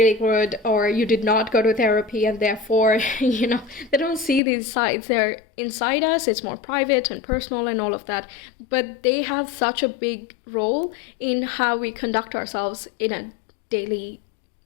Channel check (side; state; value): right; drops out; at 4.4 s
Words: good, or you did not go to therapy and therefore, they don't see these sides. They're inside us, it's more private and personal and all of that, but they have such a big role in how we conduct ourselves in a daily